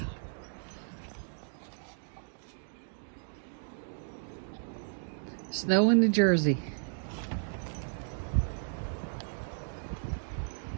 Snow in New Jersey.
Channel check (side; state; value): left; silent; digital silence